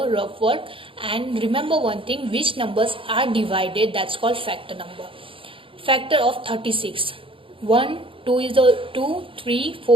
rough work. And remember one thing, which numbers are divided, that's called factor number. Factor of 36. 1, 2 is the 2, 3,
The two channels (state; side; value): late; left; 0.26 ms